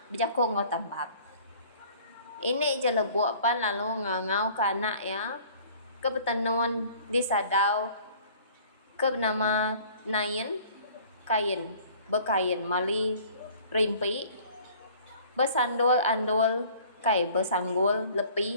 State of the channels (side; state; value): both; inverted; correlation -0.51